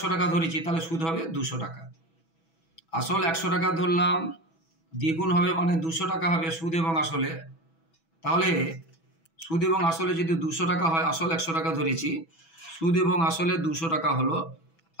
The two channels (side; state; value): right; late; 6.1 ms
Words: টাকা ধরেছি, তাহলে সুদ হবে 200 টাকা। আসল 100 টাকা ধরলাম, দ্বিগুণ হবে মানে 200 টাকা হবে সুদ এবং আসলে। তাহলে সুদ এবং আসলে যদি 200 টাকা হয়, আসল 100 টাকা ধরেছি, সুদ এবং আসলে 200 টাকা হলো,